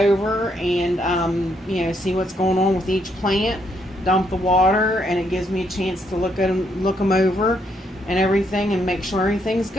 and you know, see what's going on with each plant. Dump the water, and it gives me a chance to look them over and everything, and make sure everything's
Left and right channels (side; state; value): both; normal; correlation 0.74